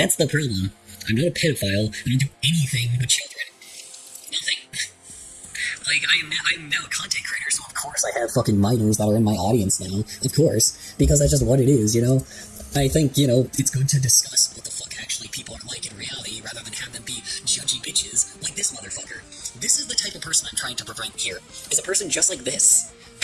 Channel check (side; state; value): both; identical; correlation 1.00